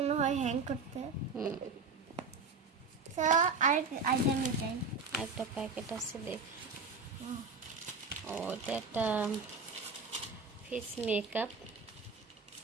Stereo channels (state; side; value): quieter; left; 4.4 dB